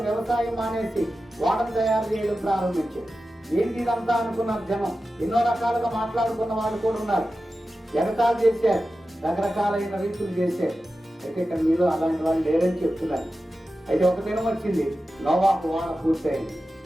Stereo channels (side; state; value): both; normal; correlation 0.93